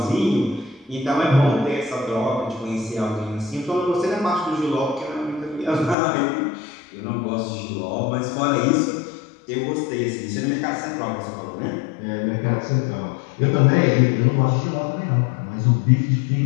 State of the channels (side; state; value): right; drops out; at 6.0 s